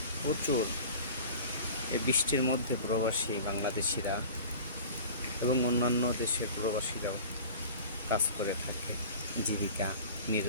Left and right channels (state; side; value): inverted; both; correlation -0.39